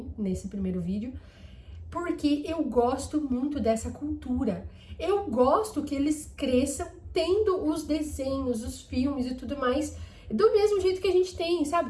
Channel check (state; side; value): identical; both; correlation 1.00